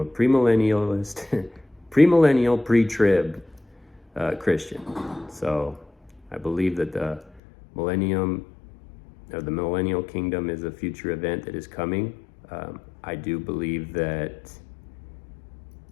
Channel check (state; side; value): drops out; right; at 7.4 s